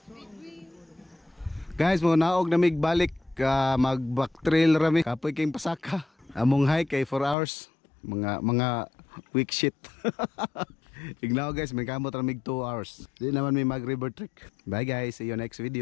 Guys, mo naog na mig balik mag-back trail rami. Kapoy kayong pasaka. Among hike kay 4 hours. Mga weak shit. Ignaw guys, may kamot ramig 2 hours. Di naman may mag river trek. Bye guys, see you next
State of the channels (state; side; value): drops out; right; at 7.4 s